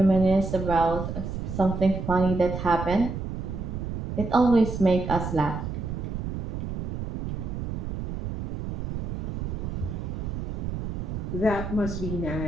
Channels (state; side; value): noise; right; rumble, 4 dB below the sound